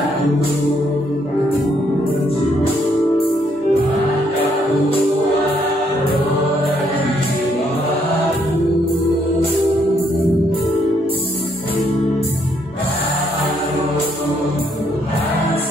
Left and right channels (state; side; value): normal; both; correlation 0.71